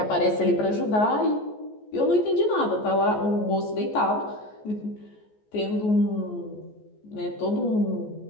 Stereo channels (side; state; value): right; late; 14 ms